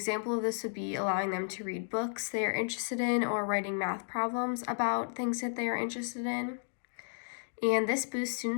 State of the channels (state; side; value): silent; right; digital silence